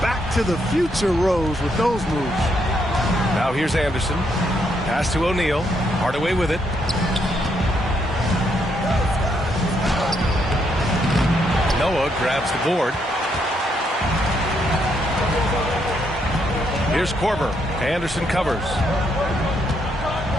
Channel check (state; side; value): normal; both; correlation 0.75